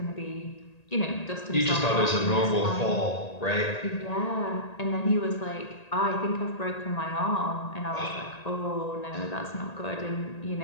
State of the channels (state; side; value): late; right; 1.8 ms